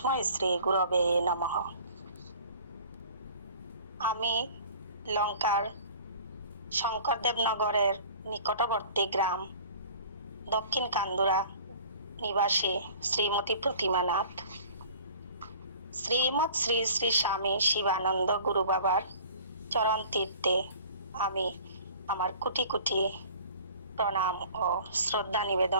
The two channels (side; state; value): both; inverted; correlation -0.47